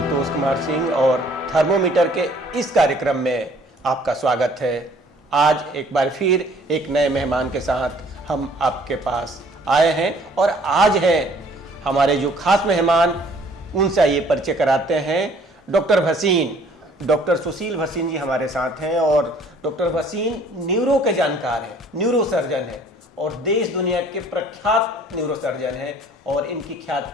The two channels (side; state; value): both; normal; correlation 0.57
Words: कुमार सिंह और थर्मोमीटर के इस कार्यक्रम में आपका स्वागत है। आज एक बार फिर एक नए मेहमान के साथ हम आपके पास आए हैं और आज है हमारे जो खास मेहमान, उनसे ये परिचय कराते हैं। डॉक्टर भसीन, डॉक्टर सुशील भसीन जी हमारे साथ हैं और डॉक्टर भसीन न्यूरो के जानकार हैं, न्यूरो सर्जन हैं और देश दुनिया के प्रख्यात न्यूरो सर्जन हैं और इनकी